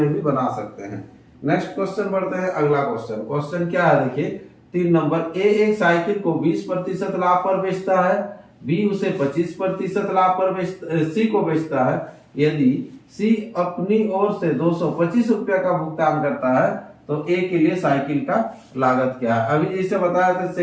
भी बना सकते हैं। नेक्स्ट क्वेश्चन बढ़ते हैं, अगला क्वेश्चन, क्वेश्चन क्या है देखिए 3 नंबर, ए एक साइकिल को 20% लाभ पर बेचता है, बी उसे 25% लाभ पर सी को बेचता है। यदि सी अपनी ओर से 225 रुपया का भुगतान करता है तो ए के लिए साइकिल का लागत क्या है। अभी जैसे बताया था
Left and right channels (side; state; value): both; identical; correlation 1.00